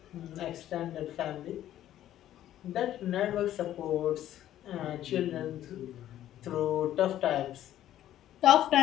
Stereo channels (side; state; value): right; quieter; 12.4 dB